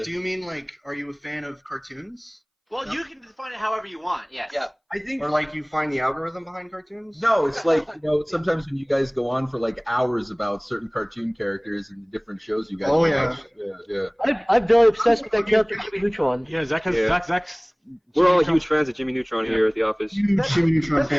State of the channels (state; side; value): identical; both; correlation 1.00